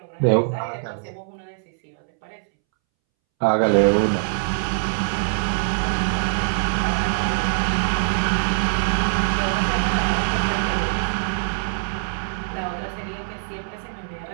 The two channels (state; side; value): silent; left; 63 dB below the other